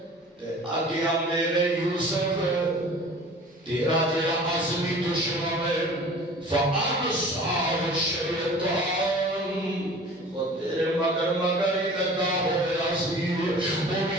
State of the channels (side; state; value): both; normal; correlation 0.44